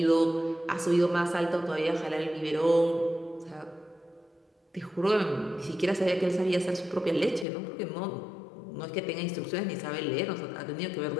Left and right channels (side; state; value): right; drops out; at 7.5 s